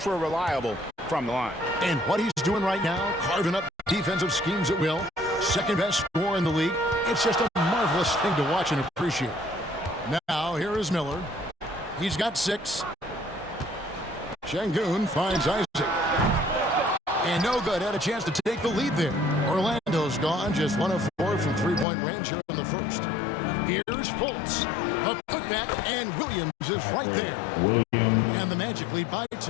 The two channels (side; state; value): right; drops out; at 21.9 s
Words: reliable from the line. And what he's doing right now, carving up defensive schemes at will. Second best scorer in the league. It's just a marvelous thing to watch and appreciate. Now, here is Miller. He's got 6. Şengün finds Isaac. And no good. Had a chance to take the lead there. Orlando's gone. Just 1 of 4 from three-point range here in the first. Here's Fultz. A putback, and Williams is right there. And the Magic lead by